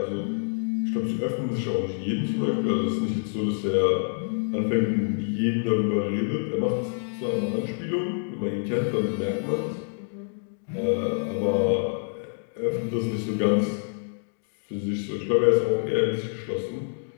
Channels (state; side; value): silent; right; digital silence